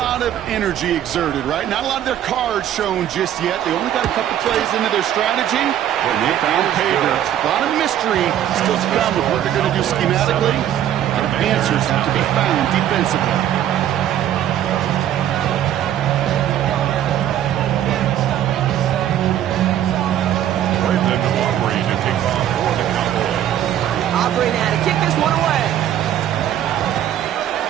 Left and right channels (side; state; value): left; quieter; 11.2 dB